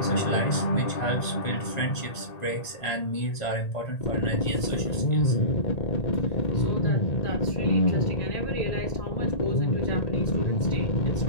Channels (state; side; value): late; right; 1.8 ms